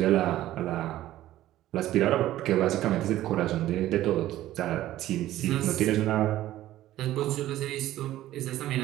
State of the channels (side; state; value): left; quieter; 14.3 dB